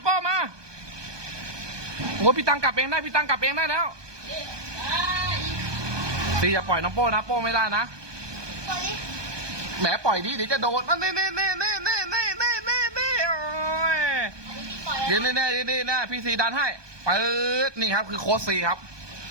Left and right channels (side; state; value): left; late; 1.2 ms